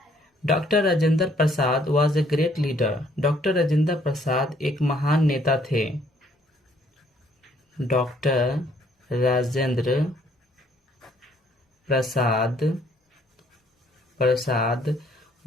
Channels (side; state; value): both; normal; correlation 0.64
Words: Doctor Rajendra Prasad was a great leader, doctor Rajendra Prasad एक महान नेता थे। Doctor Rajendra Prasad